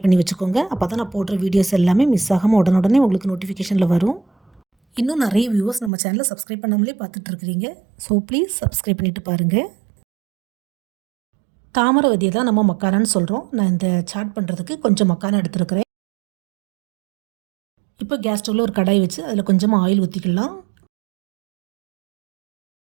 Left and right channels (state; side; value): drops out; left; at 5.9 s